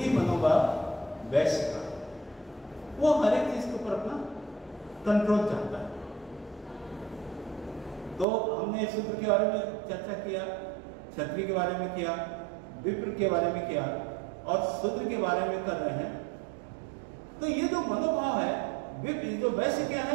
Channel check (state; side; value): drops out; left; at 8.2 s